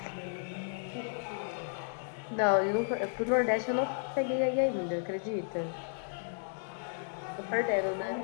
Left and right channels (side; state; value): right; silent; digital silence